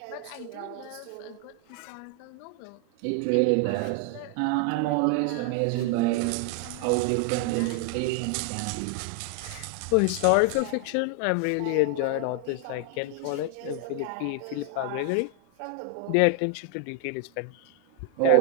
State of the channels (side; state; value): both; different; correlation 0.00